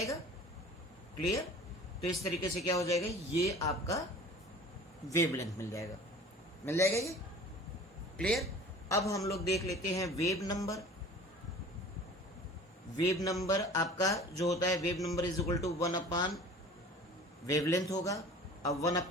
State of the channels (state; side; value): normal; both; correlation 0.43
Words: क्लियर? तो इस तरीके से क्या हो जाएगा, ये आपका वेवलेंथ मिल जाएगा, मिल जाएगा ये। क्लियर? अब हम लोग देख लेते हैं वेव नंबर। वेव नंबर आपका जो होता है, wave number is equal to 1 wavelength होगा। अब